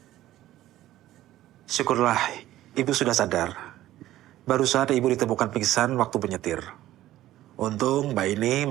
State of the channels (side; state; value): left; quieter; 14.4 dB